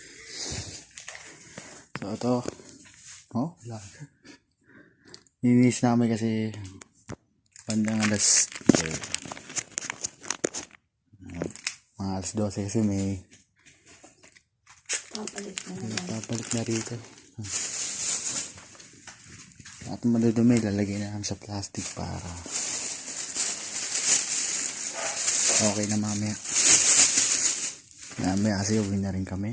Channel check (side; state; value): both; identical; correlation 1.00